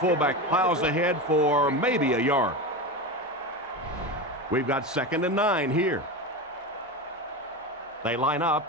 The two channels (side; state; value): both; normal; correlation 0.21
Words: plows ahead for maybe a yard. We've got 2nd and 9 here. They line